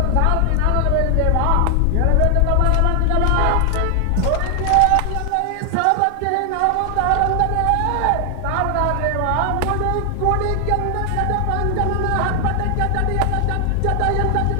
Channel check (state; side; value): different; both; correlation 0.00